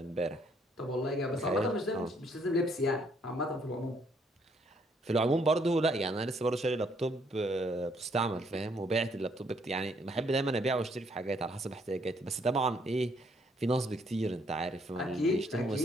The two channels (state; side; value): normal; both; correlation 0.68